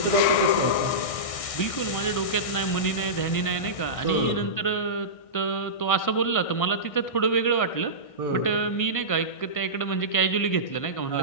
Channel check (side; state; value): right; late; 1.6 ms